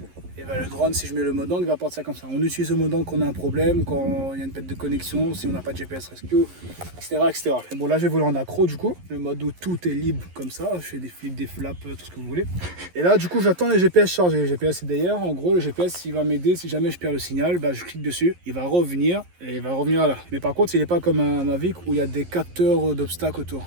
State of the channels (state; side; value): late; left; 11 ms